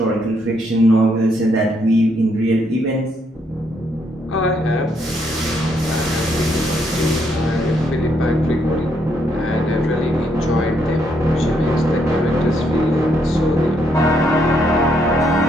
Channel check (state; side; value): normal; both; correlation 0.74